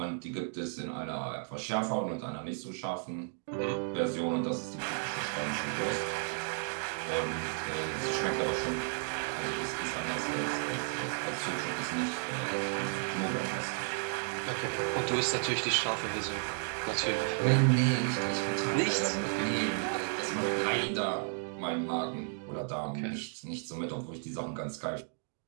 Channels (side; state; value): left; silent; 56 dB below the other